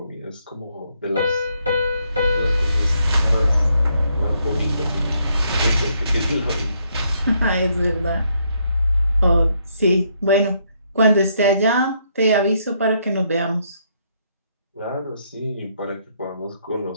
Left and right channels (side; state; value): both; inverted; correlation -0.73